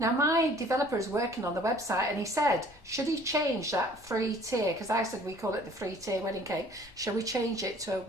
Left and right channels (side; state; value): both; normal; correlation 0.53